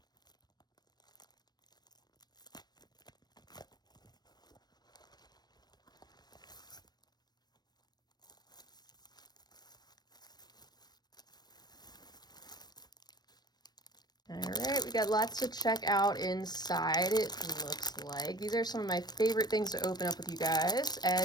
All right, we got lots to check out inside, it looks like. These are some of my favorite things to open up with you guys,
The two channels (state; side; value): late; right; 0.19 ms